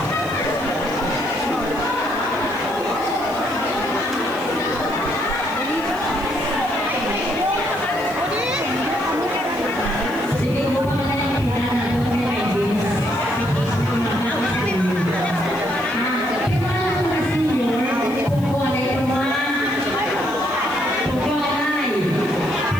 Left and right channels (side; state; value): left; noise; hiss, 21 dB below the sound